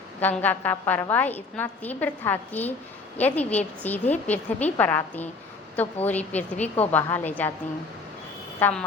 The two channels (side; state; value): right; quieter; 4.0 dB